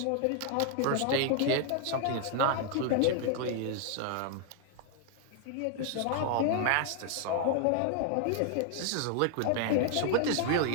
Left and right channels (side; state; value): both; different; correlation 0.00